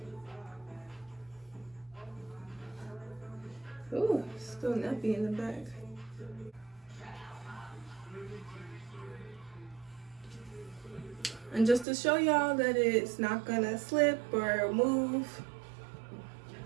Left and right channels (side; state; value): left; drops out; at 11.9 s